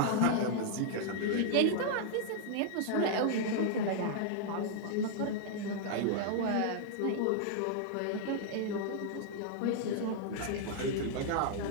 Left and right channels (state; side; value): different; both; correlation -0.01